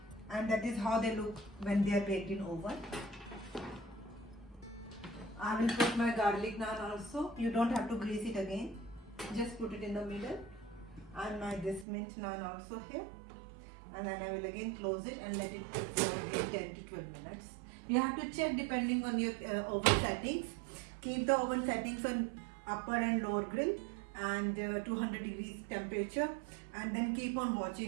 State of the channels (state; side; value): drops out; left; at 11.9 s